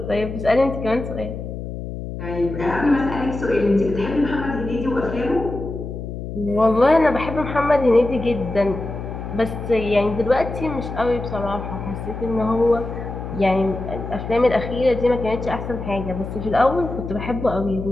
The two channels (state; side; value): noise; left; hum, 8 dB below the sound